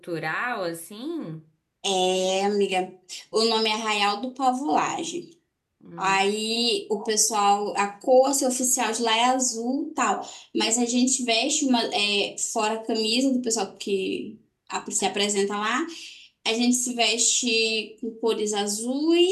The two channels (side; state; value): both; identical; correlation 1.00